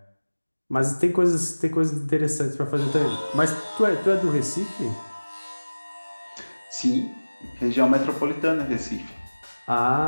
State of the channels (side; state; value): both; inverted; correlation -1.00